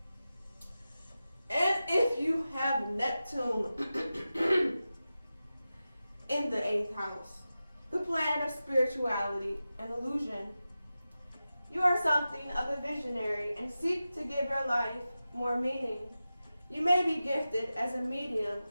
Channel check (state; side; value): inverted; both; correlation -0.94